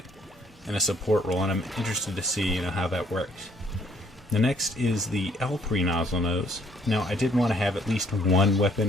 in a support role, and I'm interested to see, you know, how that works. The next is the L3 Nozzle Nose. Now, I did want to have at least one weapon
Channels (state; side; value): normal; both; correlation 0.64